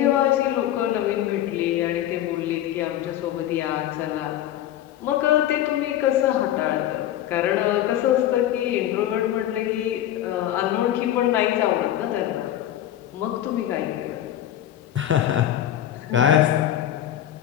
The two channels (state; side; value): quieter; right; 12.1 dB